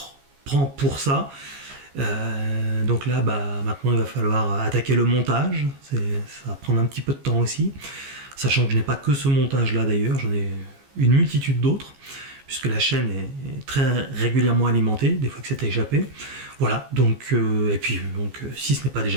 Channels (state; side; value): late; left; 15 ms